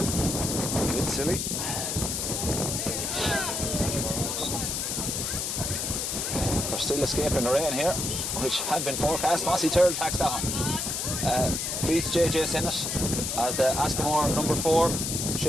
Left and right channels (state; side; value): noise; left; hiss, 1 dB below the sound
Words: bit silly. We're still escaping the rain here, which had been forecast. Mossy Tyrrell tacks down. Beats JJ Sinnott as the Askamore number 4,